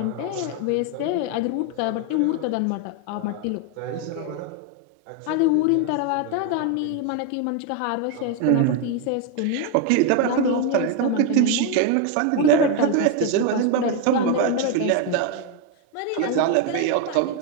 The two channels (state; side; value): different; both; correlation 0.01